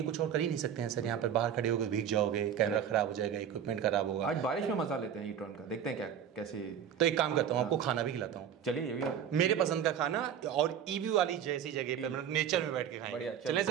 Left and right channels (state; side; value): quieter; left; 8.8 dB